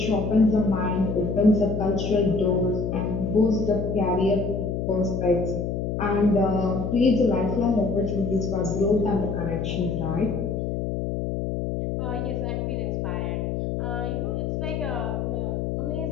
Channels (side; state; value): left; noise; hum, 2 dB below the sound